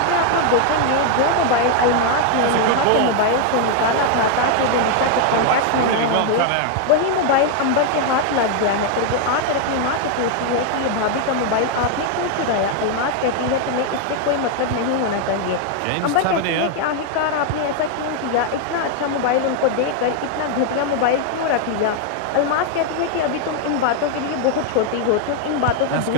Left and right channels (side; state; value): both; different; correlation 0.00